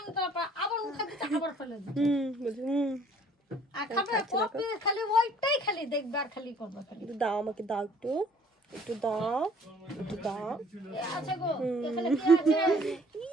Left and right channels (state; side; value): normal; both; correlation 0.57